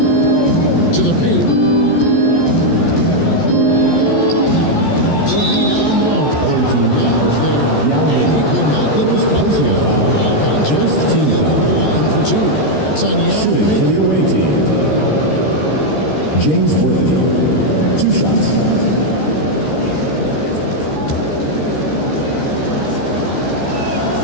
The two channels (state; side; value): late; right; 14 ms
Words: To the paint. Worthy down low. Now's there, and he could not get that one to go. Out of contrast, he'll go to the line for 2. That's on Yao Ming. James Worthy, 2 shots.